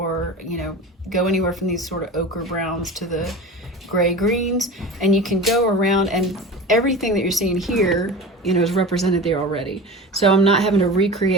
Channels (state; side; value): normal; both; correlation 0.33